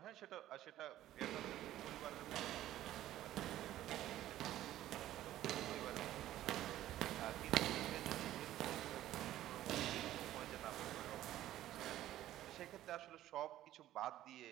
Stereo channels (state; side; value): quieter; left; 13.6 dB